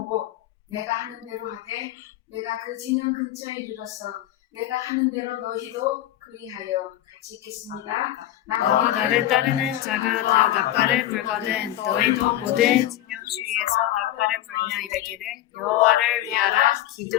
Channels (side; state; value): right; quieter; 13.5 dB